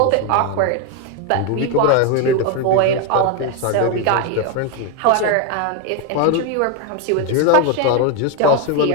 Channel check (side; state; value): both; different; correlation 0.01